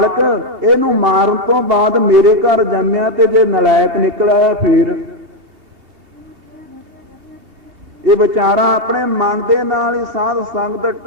ਇਹਨੂੰ ਮਾਰਨ ਤੋਂ ਬਾਅਦ ਮੇਰੇ ਘਰ ਜੰਮਿਆ ਤੇ ਜੇ ਨਲਾਇਕ ਨਿਕਲਿਆ ਫੇਰ ਇਹ ਵਿਚਾਰਾ ਆਪਣੇ ਮਨ ਦੇ ਨਾਲ ਹੀ ਸਾਧ ਸੰਗਤ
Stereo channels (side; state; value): left; late; 3.2 ms